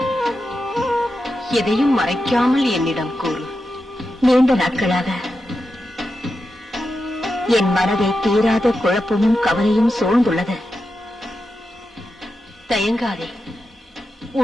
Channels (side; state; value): both; normal; correlation 0.89